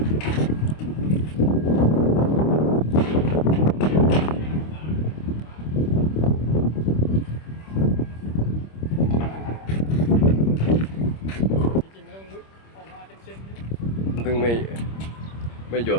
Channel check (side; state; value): right; late; 26 ms